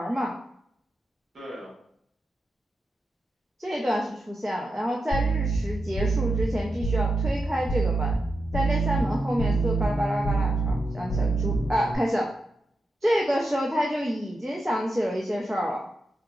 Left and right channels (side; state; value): both; normal; correlation 0.88